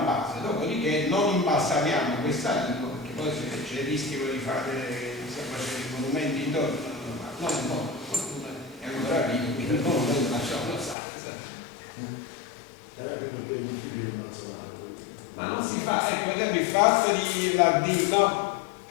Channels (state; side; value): drops out; right; at 11.0 s